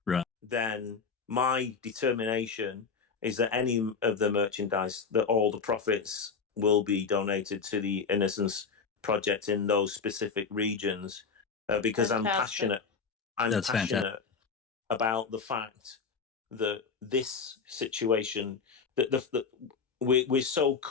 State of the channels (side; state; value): right; quieter; 5.4 dB